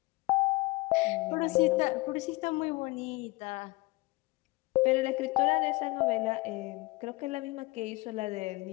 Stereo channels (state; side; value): quieter; right; 23.0 dB